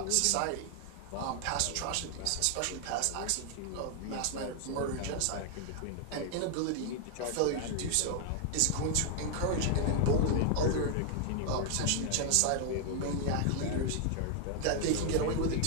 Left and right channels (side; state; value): both; different; correlation 0.00